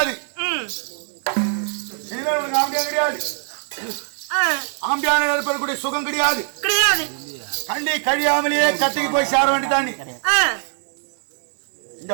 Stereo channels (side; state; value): left; silent; 57 dB below the other